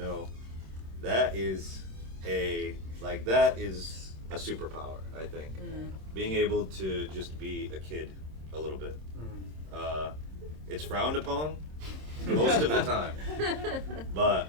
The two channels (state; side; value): late; left; 26 ms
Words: that is a superpower, I think. Being able to just be a kid a little bit. It's frowned upon most of the time,